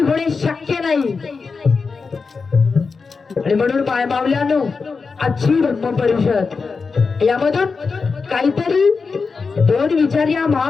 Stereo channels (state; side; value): quieter; right; 4.8 dB